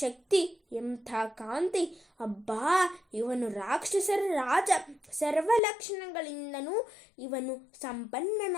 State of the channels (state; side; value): drops out; right; at 5.6 s